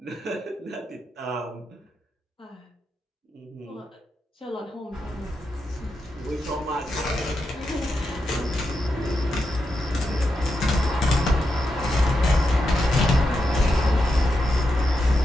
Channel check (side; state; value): both; normal; correlation 0.86